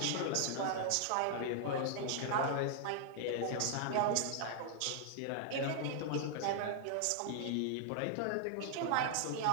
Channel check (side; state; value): both; different; correlation 0.00